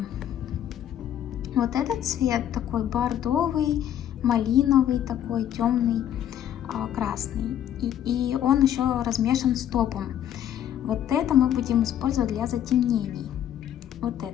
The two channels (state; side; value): quieter; right; 10.6 dB